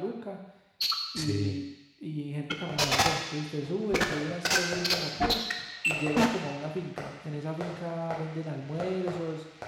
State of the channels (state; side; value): identical; both; correlation 1.00